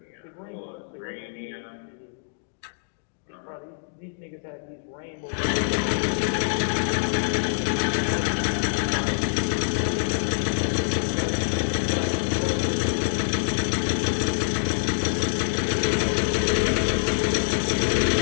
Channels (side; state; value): right; silent; digital silence